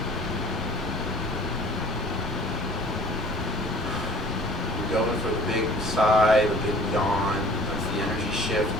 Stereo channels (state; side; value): normal; both; correlation 0.50